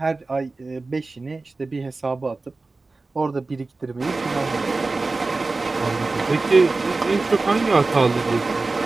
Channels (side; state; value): left; quieter; 3.6 dB